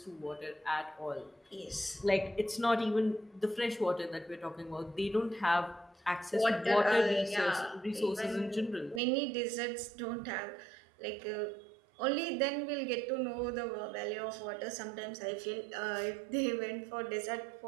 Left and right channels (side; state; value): left; drops out; at 9.0 s